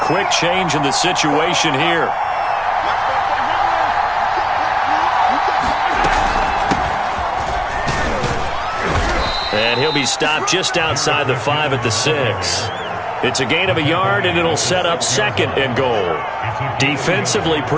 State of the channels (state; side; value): identical; both; correlation 1.00